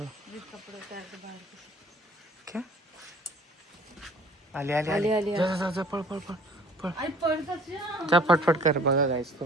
उतार के बाहर के। क्या आली जा जा पळ पळ पळ पळ आई पडतात जा। जा फटफट कर. बघा गाईस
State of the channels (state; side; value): normal; both; correlation 0.51